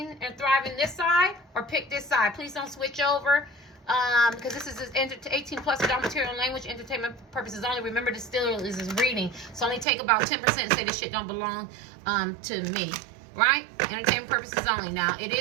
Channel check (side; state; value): left; drops out; at 9.9 s